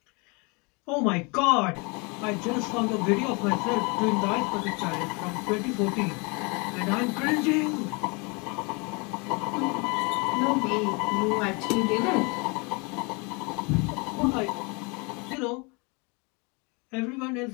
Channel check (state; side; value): quieter; right; 30.3 dB